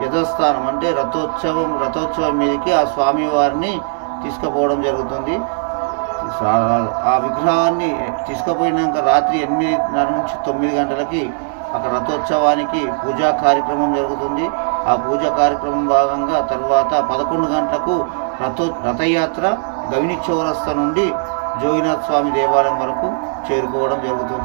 యథస్థానం అంటే రథోత్సవం మీదకి ఆ స్వామివారిని తీసుకుపోవడం జరుగుతుంది. ఆ విగ్రహాన్ని తీసుకుపోయినాక రాత్రి 8:30 నుంచి 9 గంటలకి అక్కడ రథోత్సవానికి పూజా కార్యక్రమం జరుగుతుంది. ఆ పూజా కార్యక్రమం భాగంగా తర్వాత 11 గంటలకు రథయాత్ర గవిని చౌరస్తా నుండి జోగినాథ స్వామి దేవాలయం వరకు చేరుకోవడం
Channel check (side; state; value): left; silent; 61 dB below the other